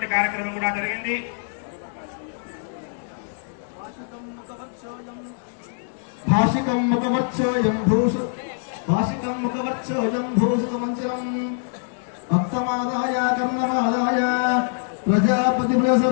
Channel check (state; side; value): silent; right; digital silence